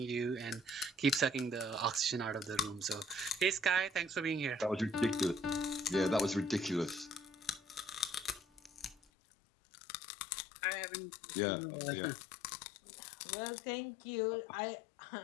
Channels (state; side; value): drops out; right; at 9.0 s